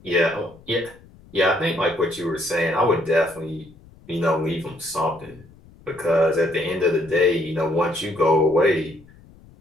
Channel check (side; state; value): left; noise; rumble, 25 dB below the sound